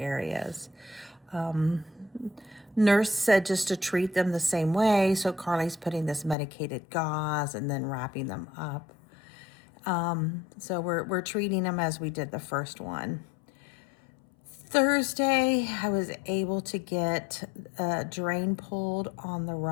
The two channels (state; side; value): drops out; right; at 6.4 s